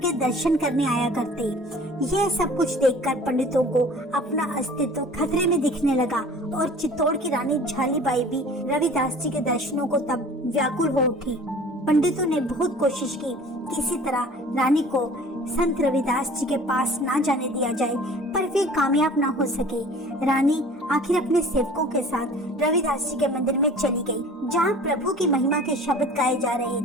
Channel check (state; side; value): normal; both; correlation 0.46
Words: दर्शन करने आया करते। यह सब कुछ देखकर पंडितों को अपना अस्तित्व खतरे में दिखने लगा और चित्तौड़ की रानी झालीबाई भी रविदास जी के दर्शनों को तब व्याकुल हो उठी। पंडितों ने बहुत कोशिश की किसी तरह रानी को संत रविदास जी के पास ना जाने दिया जाए, पर वे कामयाब ना हो सके। रानी आखिर अपने सेवकों के साथ रविदास जी के मंदिर में चली गई, जहाँ प्रभु की महिमा के शब्द गाए जा रहे